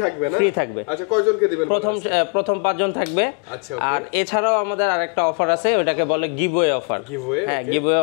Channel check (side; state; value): right; quieter; 37.4 dB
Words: থাকবে না ফ্রি থাকবে আচ্ছা কয়জনকে দিবেন বলেন প্রথম 5 জন থাকবে আচ্ছা ওকে আর এছাড়াও আমাদের আরেকটা অফার আছে ওটাকে বলে giveaway offer okay giveaway